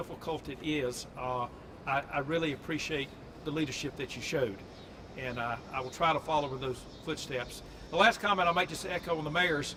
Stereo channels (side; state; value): both; identical; correlation 1.00